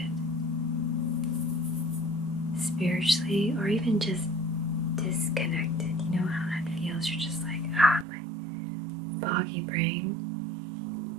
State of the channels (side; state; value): left; drops out; at 8.1 s